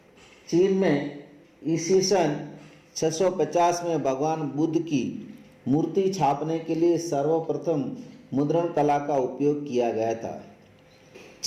चीन में ईस्वी सन 650 में भगवान बुद्ध की मूर्ति छापने के लिए सर्वप्रथम मुद्रण कला का उपयोग किया गया था।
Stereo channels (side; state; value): both; identical; correlation 1.00